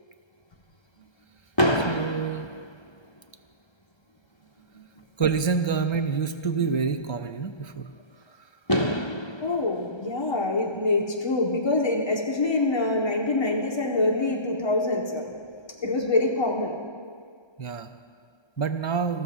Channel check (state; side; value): late; right; 1.3 ms